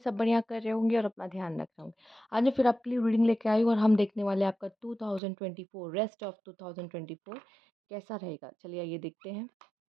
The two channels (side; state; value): left; drops out; at 5.2 s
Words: बढ़िया कर रहे होंगे और अपना ध्यान रख रहे होंगे। आज मैं फिर आपके लिए रीडिंग लेके आई हूँ और हम देखने वाले हैं आपका 2024 रेस्ट ऑफ 2024 कैसा रहेगा। चलिए आइए देखते हैं।